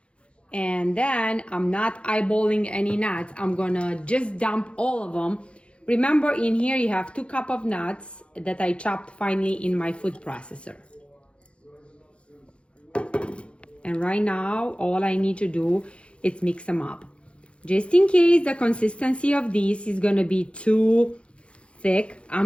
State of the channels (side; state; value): right; late; 0.059 ms